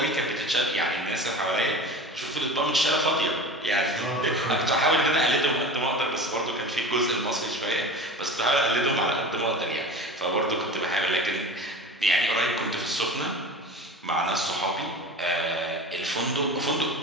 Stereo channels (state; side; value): normal; both; correlation 0.34